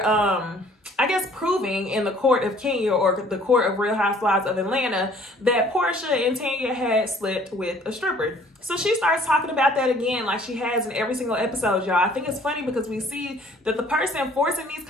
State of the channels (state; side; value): normal; both; correlation 0.56